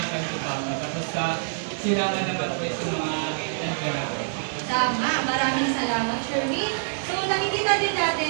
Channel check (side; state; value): left; silent; 61 dB below the other